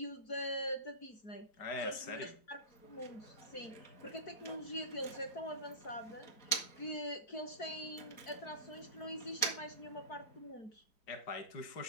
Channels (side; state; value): right; late; 4.2 ms